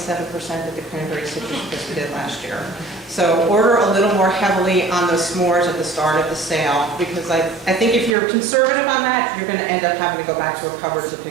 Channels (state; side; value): drops out; left; at 8.2 s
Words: that the cranberry citrus crisp did last year. So order a little more heavily on those s'mores at the start of the sale, because I think if you're conservative on that, you're going to end up having to go back to a cupboard to